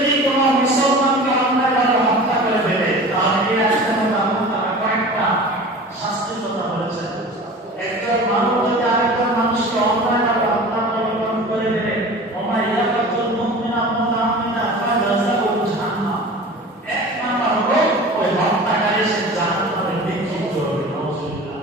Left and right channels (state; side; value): normal; both; correlation 0.38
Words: কোনো মুসলমানকে অন্যায়ভাবে হত্যা করে ফেলে তাহলে এই আয়াতের মধ্যে আল্লাহ তাআলা কয়েকটা শাস্তির কথা বলেছেন। একজন মানুষ যদি আরেকজন মানুষকে অন্যায়ভাবে হত্যা করে ফেলে ওমা ইয়াকাতুল মুমিনা মুতাআকিদা ফাজাযাউ জাহান্নাম, এক নাম্বার হলো ওই হত্যাকারী সে জাহান্নামে নিক্ষিপ্ত হবে। নাউযুবিল্লাহ।